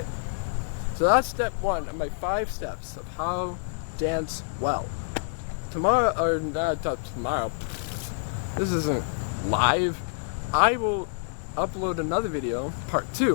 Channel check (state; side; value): silent; right; digital silence